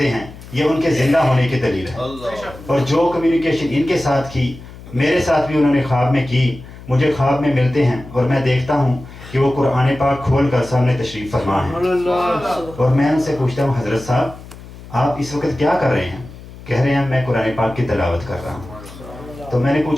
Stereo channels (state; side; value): noise; left; hum, 17 dB below the sound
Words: हैं, ये उनके ज़िंदा होने की दलील है। और जो कम्युनिकेशन इनके साथ की, मेरे साथ भी उन्होंने ख्वाब में की, मुझे ख्वाब में मिलते हैं और मैं देखता हूँ कि वो कुरान पाक खोल कर सामने तशरीफ़ फरमा है। और मैं उनसे पूछता हूँ, हज़रत साहब आप इस वक्त क्या कर रहे हैं? कह रहे हैं मैं कुरान पाक की तिलावत कर रहा हूँ। तो मैंने